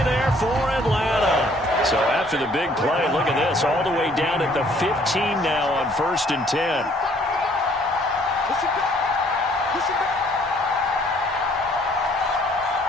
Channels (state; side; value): normal; both; correlation 0.61